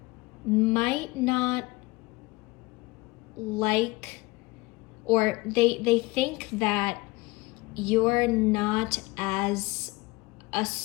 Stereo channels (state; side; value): quieter; right; 22.0 dB